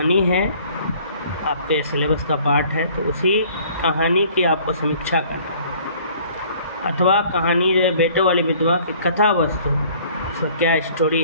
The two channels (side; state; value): both; inverted; correlation -0.55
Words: है, आपके सिलेबस का पार्ट है, तो उसी कहानी की आपको समीक्षा करना है। अथवा कहानी जो है बेटों वाली विधवा की कथा वस्तु, उसका क्या स्टोरी